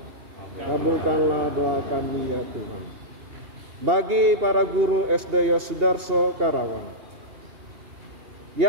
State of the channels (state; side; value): late; left; 2.8 ms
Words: Kabulkanlah doa kami ya Tuhan. Bagi para guru SD Yosudarso Karawang,